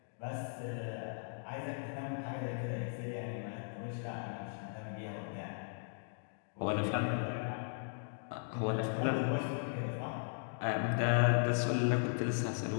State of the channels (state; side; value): silent; right; digital silence